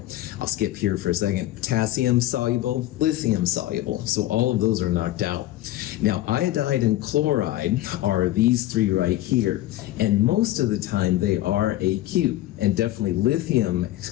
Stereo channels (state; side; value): quieter; right; 15.2 dB